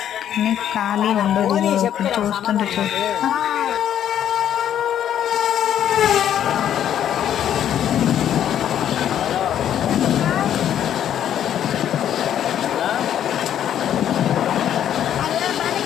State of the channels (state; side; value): quieter; right; 10.2 dB